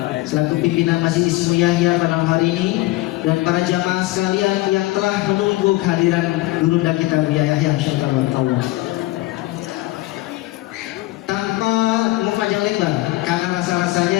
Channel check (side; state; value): right; quieter; 18.9 dB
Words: selaku pimpinan Masjid Ismu Yahya pada malam hari ini, dan para jamaah sekalian yang telah menunggu kehadiran Gurunda kita Buya Yahya. Insyaallah. Tanpa panjang lebar, karena